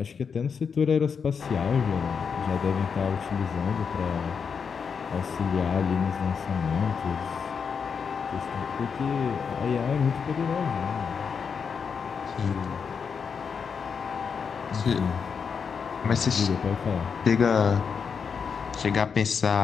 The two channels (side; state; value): right; quieter; 6.2 dB